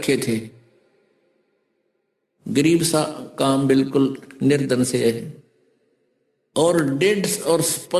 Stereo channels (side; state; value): both; identical; correlation 1.00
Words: थे, गरीब सा काम, बिल्कुल निर्धन से है। और